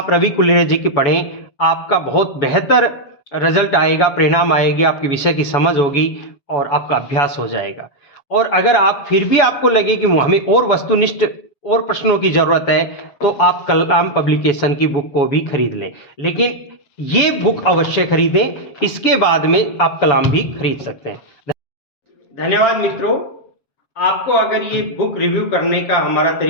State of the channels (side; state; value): right; late; 7.0 ms